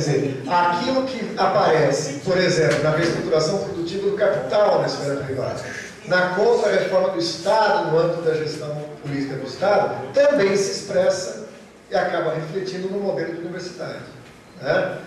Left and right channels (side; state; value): both; identical; correlation 1.00